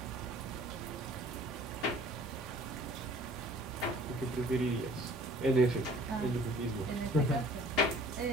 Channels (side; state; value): both; normal; correlation 0.52